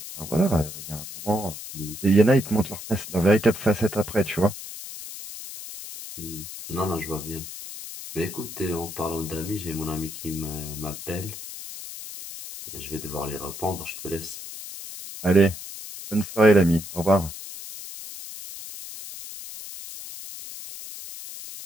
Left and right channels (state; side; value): noise; left; hiss, 11 dB below the sound